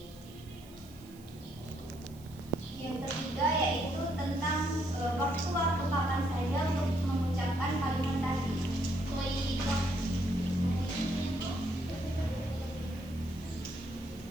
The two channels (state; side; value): noise; right; hiss, 24 dB below the sound